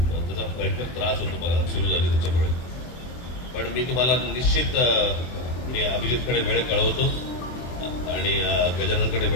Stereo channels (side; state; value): right; late; 24 ms